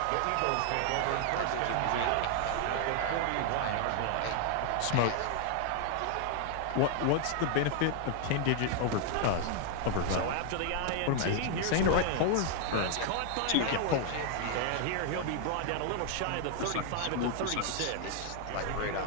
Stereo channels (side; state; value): both; different; correlation 0.00